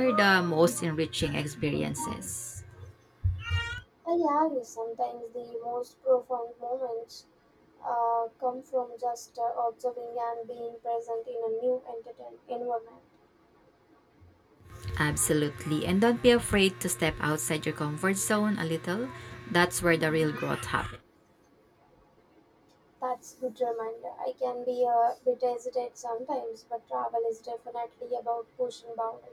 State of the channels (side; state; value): both; identical; correlation 1.00